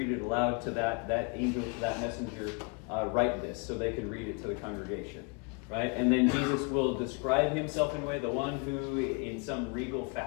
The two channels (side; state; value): right; quieter; 32.2 dB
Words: it aloud to that angel, to that messenger, write this so they could read it to the congregation. Right? And then Jesus will describe himself in a way, the one who in some regal